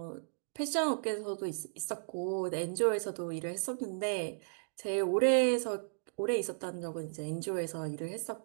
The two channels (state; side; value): silent; left; digital silence